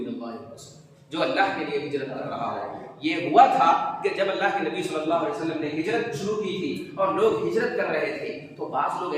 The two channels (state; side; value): identical; both; correlation 1.00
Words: اللہ ورسولہ، جو اللہ کے لیے ہجرت کر رہا ہے۔ یہ ہوا تھا کہ جب اللہ کے نبی صلی اللہ علیہ وسلم نے ہجرت شروع کی تھی اور لوگ ہجرت کر رہے تھے، تو بعض لوگ